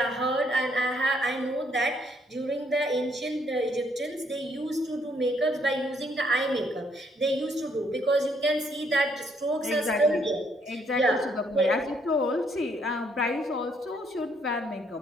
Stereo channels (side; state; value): both; normal; correlation 0.70